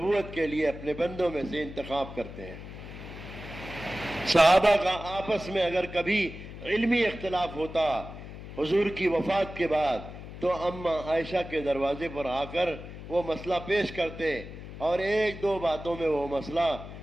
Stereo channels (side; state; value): left; noise; hum, 12 dB below the sound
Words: کے لیے اپنے بندوں میں سے انتخاب کرتے ہیں۔ صحابہ کا آپس میں اگر کبھی علمی اختلاف ہوتا حضور کی وفات کے بعد تو اماں عائشہ کے دروازے پر آ کر وہ مسئلہ پیش کرتے اور ایک دو باتوں میں وہ مسئلہ